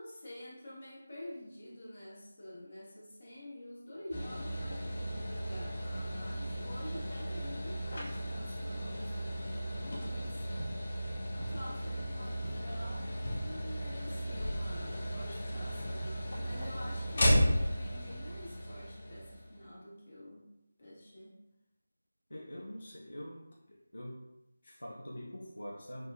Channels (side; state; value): both; inverted; correlation -0.95